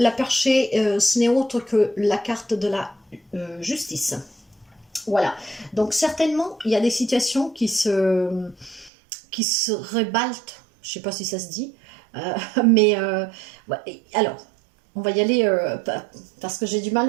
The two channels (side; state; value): left; drops out; at 8.9 s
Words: perchée, ce n'est autre que la carte de la justice. Voilà, donc certainement, il y a des situations qui se rebalte, je ne sais pas si ça se dit, mais ouais, alors, on va y aller parce que j'ai du mal